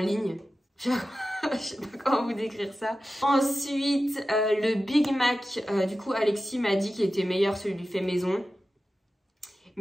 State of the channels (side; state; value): both; normal; correlation 0.93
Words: Je sais pas comment vous décrire ça. Ensuite, le Big Mac. Du coup, Alexis m'a dit qu'il était meilleur celui du fait maison.